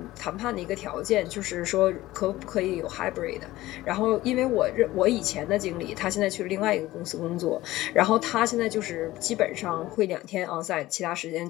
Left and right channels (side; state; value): right; quieter; 16.9 dB